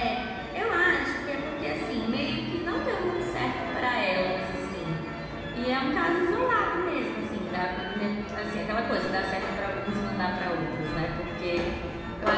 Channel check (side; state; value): both; identical; correlation 1.00